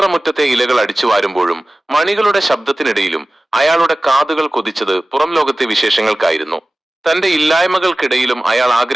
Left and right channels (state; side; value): normal; both; correlation 0.97